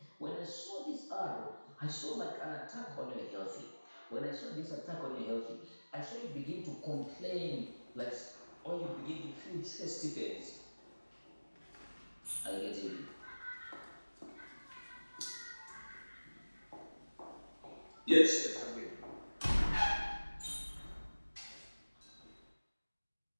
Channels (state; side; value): inverted; both; correlation -1.00